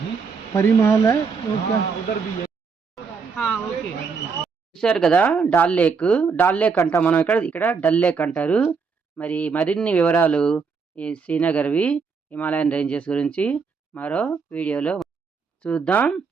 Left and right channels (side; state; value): left; quieter; 5.3 dB